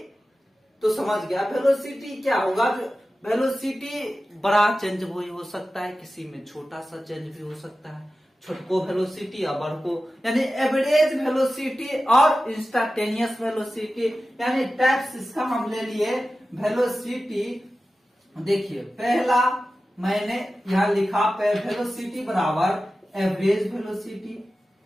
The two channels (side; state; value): both; normal; correlation 0.94